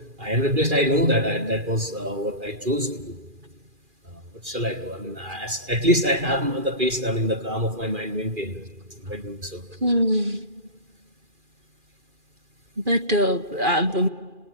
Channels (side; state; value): left; late; 2.4 ms